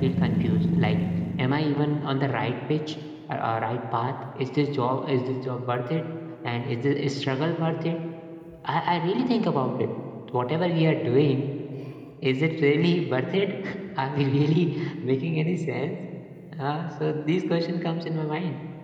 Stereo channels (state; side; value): identical; both; correlation 1.00